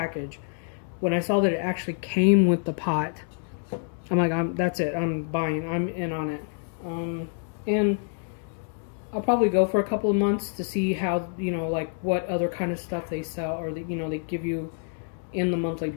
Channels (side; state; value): right; silent; 55 dB below the other